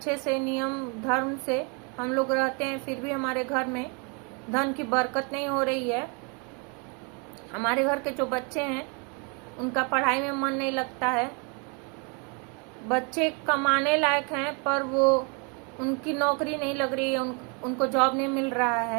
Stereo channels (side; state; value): left; quieter; 34.5 dB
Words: से नियम धर्म से हम लोग रहते हैं, फिर भी हमारे घर में धन की बरकत नहीं हो रही है। हमारे घर के जो बच्चे हैं उनका पढ़ाई में मन नहीं लगता है। बच्चे कमाने लायक हैं पर वो उनकी नौकरी नहीं लग रही है, उनको जॉब नहीं मिल रहा